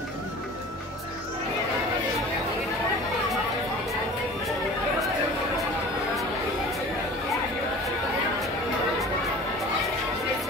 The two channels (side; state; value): both; normal; correlation 0.42